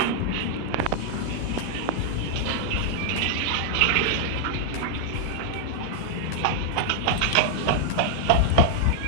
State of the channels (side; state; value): both; different; correlation 0.00